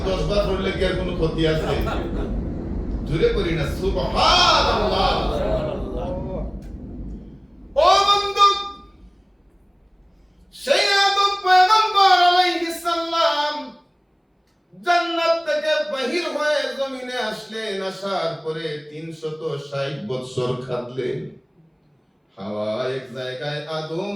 10 বার পড়লে কি আর কোনো ক্ষতি আছে? জোরে করি না সুবহানাল্লাহ। ও বন্ধু, সেই আদম পয়গম্বর আলাইহিস সালাম জান্নাত থেকে বাহির হয়ে জমিনে আসলেন। আসার পরে 360 বছর কাটলেন। হাওয়া এক জায়গায়, আদম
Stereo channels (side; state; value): both; identical; correlation 1.00